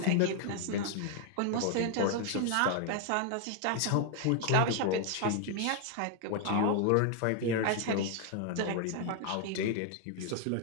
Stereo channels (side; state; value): both; different; correlation 0.00